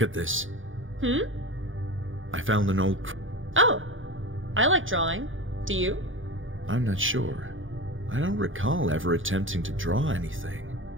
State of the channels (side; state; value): left; late; 0.58 ms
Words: at this. I found an old... Oh! I like drawing. Do you? I'm not sure. I don't recall ever attempting to draw anything.